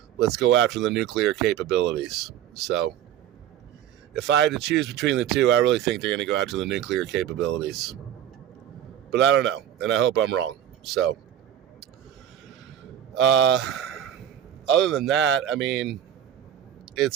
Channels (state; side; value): quieter; left; 10.6 dB